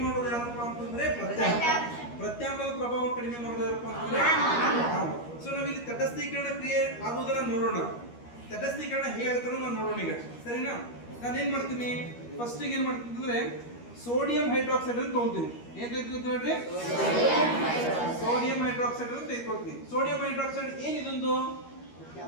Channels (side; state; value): right; late; 13 ms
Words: ಮಾಡೋದು ಯಾರಪ್ಪ ಅಂತಂದ್ರೆ ಪ್ರತ್ಯಾಮ್ಲ. ಪ್ರತ್ಯಾಮ್ಲದ ಪ್ರಭಾವವನ್ನು ಕಡಿಮೆ ಮಾಡೋದು ಯಾರಪ್ಪ ಅಂತಂದ್ರೆ ಆಮ್ಲ. ಸೊ ನಾವಿಲ್ಲಿ ತಟಸ್ಥೀಕರಣ ಕ್ರಿಯೆ ಆಗುವುದನ್ನ ನೋಡೋಣ. ತಟಸ್ಥೀಕರಣ ಹೇಗಾಗುತ್ತೋ ನಾವು ನೋಡೋಣ ಈಗ, ಸರಿನಾ? ನಾನು ಏನ್ ಮಾಡ್ತೀನಿ, ಫಸ್ಟ್ ಏನ್ ಮಾಡ್ತೀನಿ ಅಂದ್ರೆ ಸೋಡಿಯಂ ಹೈಡ್ರಾಕ್ಸೈಡ್ ಅಂತ ತಗೊಳ್ತೀನಿ. ಏನ್ ತೆಗೆದುಕೊಳ್ತೀನಿ ನೋಡ್ರಿ? ಸೋಡಿಯಂ ಹೈಡ್ರಾಕ್ಸೈಡ್ ಅಂತ ತೆಗೆದುಕೊಳ್ತೀನಿ. ಸೋಡಿಯಂ ಹೈಡ್ರಾಕ್ಸೈಡ್ ಏನಿದೊಂದು